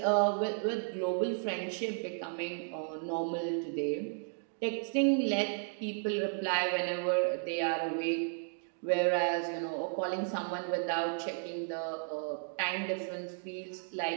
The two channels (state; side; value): silent; left; 55 dB below the other